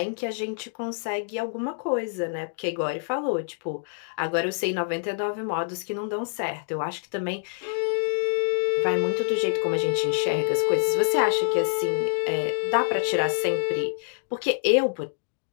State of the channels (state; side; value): silent; right; digital silence